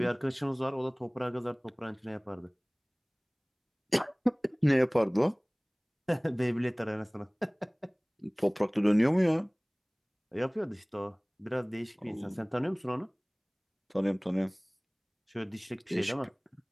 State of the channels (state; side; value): identical; both; correlation 1.00